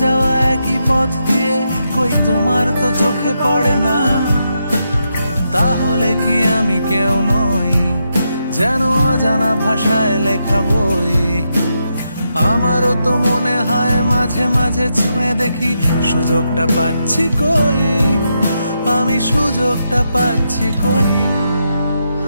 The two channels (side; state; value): both; inverted; correlation -0.83